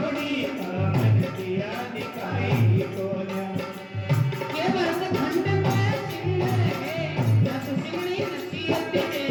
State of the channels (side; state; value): both; identical; correlation 1.00